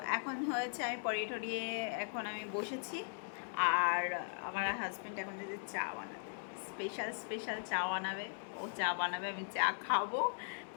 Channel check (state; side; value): silent; right; digital silence